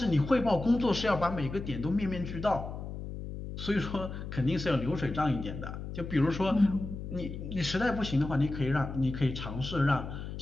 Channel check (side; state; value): left; noise; hum, 8 dB below the sound